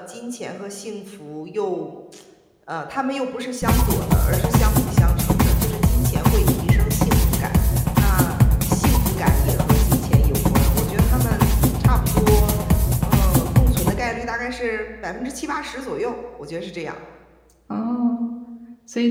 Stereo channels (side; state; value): both; identical; correlation 1.00